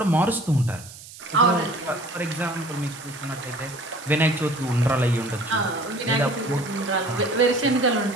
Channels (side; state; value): right; noise; hiss, 17 dB below the sound